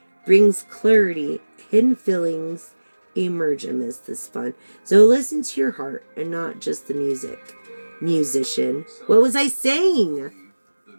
brings clarity, hidden feelings emerge amidst this fun. So listen to your heart and not just the music. Musician. What was I saying? The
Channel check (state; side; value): inverted; both; correlation -1.00